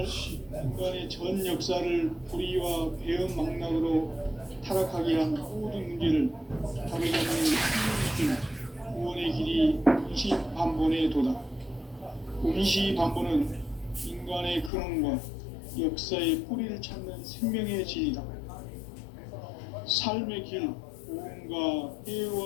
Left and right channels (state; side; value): drops out; right; at 14.7 s